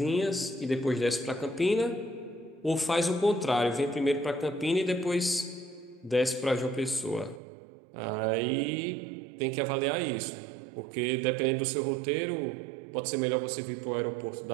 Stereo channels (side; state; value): left; drops out; at 7.4 s